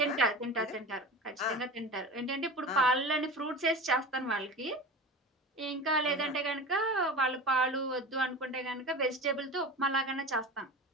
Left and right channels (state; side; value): normal; both; correlation 0.32